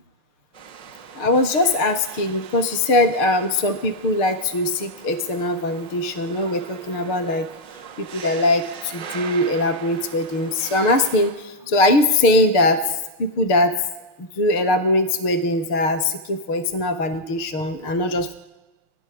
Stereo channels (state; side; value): late; right; 6.6 ms